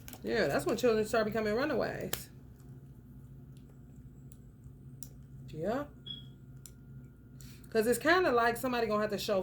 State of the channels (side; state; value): both; identical; correlation 1.00